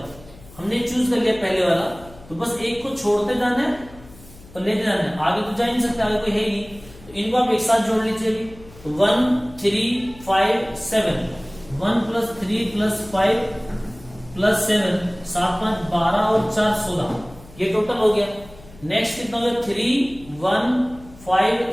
हमने चूज कर लिया पहले वाला, तो बस एक को छोड़ते जाना है और लेते जाना है, आगे तो जा नहीं सकते, आगे कोई है ही नहीं। तो इनको आप एक साथ जोड़ लीजिए। 1, 3, 5, 7, 1 + 3 + 5 + 7, 7, 5, 12 और 4, 16, ये टोटल हो गया। नेक्स्ट कितना हो गया? 3, 1, 5,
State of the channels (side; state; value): left; noise; hum, 21 dB below the sound